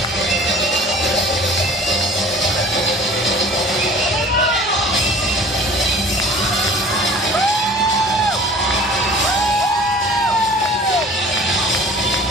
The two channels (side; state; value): both; normal; correlation 0.45